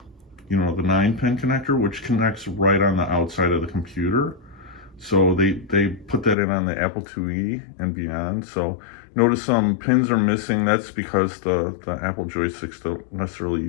the 9-pin connector, which connects right on the outside of the computer. So they put that in on the Apple IIe and beyond. So notice some pins are missing. That's because the Apple joysticks don't necessarily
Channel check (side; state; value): right; drops out; at 6.4 s